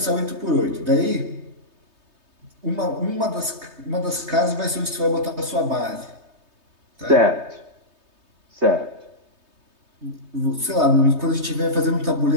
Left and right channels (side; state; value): left; late; 3.2 ms